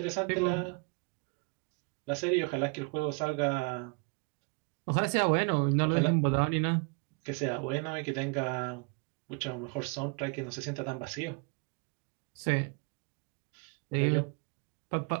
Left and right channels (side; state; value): left; quieter; 34.1 dB